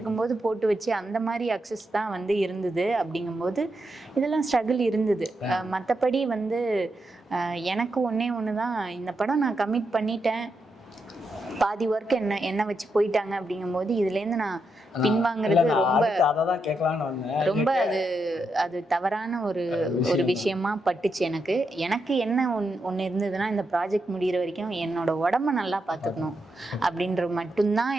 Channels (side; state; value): both; normal; correlation 0.84